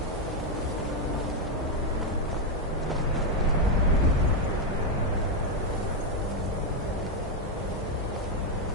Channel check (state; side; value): normal; both; correlation 0.03